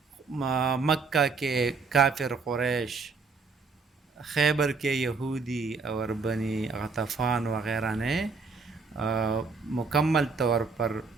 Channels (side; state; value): left; quieter; 4.6 dB